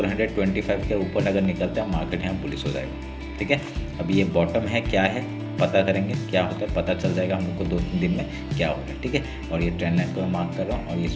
के ऊपर अगर निकलता है मार्केट यहाँ पुलिस हो जाएगा। ठीक है, अब ये बॉटम है, क्या है पता करेंगे, क्या होता है पता चल जाएगा हम लोग को 2-3 दिन में क्या हो रहा है। ठीक है, और ये ट्रेंड लाइन को मैं मार्क कर रहा हूँ और इस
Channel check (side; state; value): both; identical; correlation 1.00